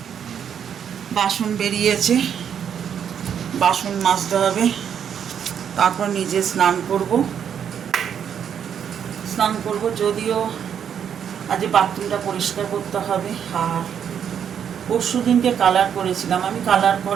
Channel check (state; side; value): quieter; left; 8.3 dB